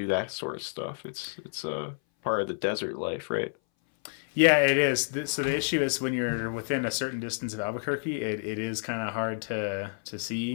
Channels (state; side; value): silent; right; 58 dB below the other